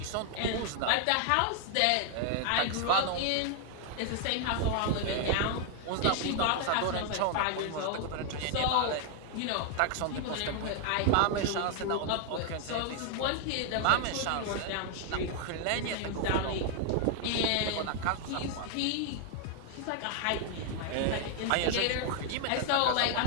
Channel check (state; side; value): different; both; correlation 0.00